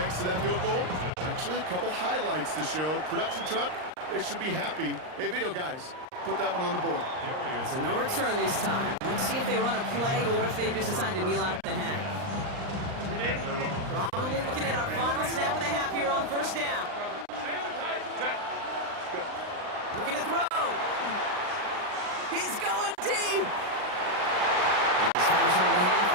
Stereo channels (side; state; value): left; late; 39 ms